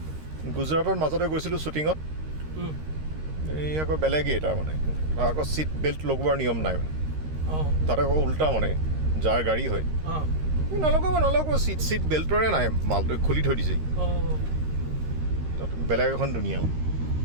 গুজৰাটৰ মাজতে গৈছিলোঁ শ্বুটিঙত, এই আকৌ বেলেগেই তাৰমানে আকৌ ছিট বেল্ট লগোৱাৰ নিয়ম নাই মানে, তাতে আকৌ উল্টা মানে যাৰ গাড়ী হয় নলগাব ছিট বেল্টৰে নাই, মালটো খুলি থৈ দিছে। তাত বেলেগ এখন দুনিয়া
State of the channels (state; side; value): late; left; 13 ms